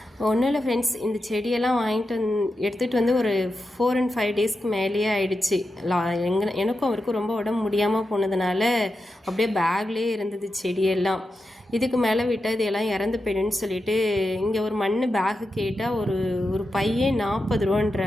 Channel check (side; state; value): both; normal; correlation 0.89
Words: ஒன்றும் இல்லை ஃப்ரெண்ட்ஸ், இந்த செடியெல்லாம் வாங்கிட்டு எடுத்துகிட்டு ஒரு 4 and 5 டேஸ்க்கு மேலேயே ஆயிடுச்சு. எனக்கும் அவருக்கும் ரொம்ப உடம்பு முடியாமல் போனதுனால அப்படியே பேக்லேயே இருந்தது செடியெல்லாம். இதுக்கு மேலே விட்டால் இது எல்லாம் இறந்து போயிடுன்னு சொல்லிட்டு இங்கே ஒரு மண் பேகு கேட்டால் ஒரு பையே 40